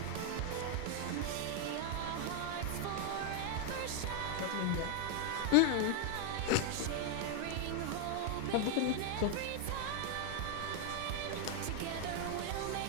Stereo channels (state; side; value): different; both; correlation 0.01